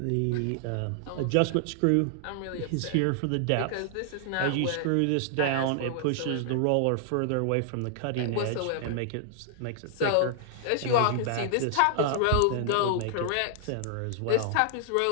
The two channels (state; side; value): different; both; correlation -0.01